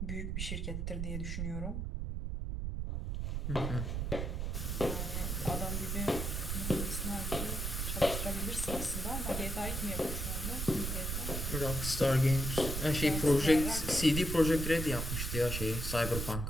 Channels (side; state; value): right; noise; rumble, 2 dB below the sound